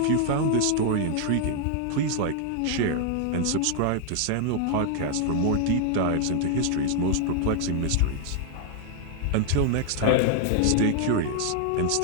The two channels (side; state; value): both; different; correlation 0.00